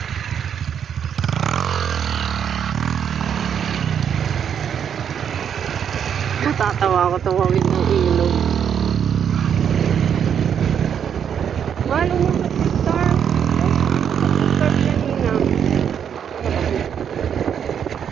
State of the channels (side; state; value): left; quieter; 8.3 dB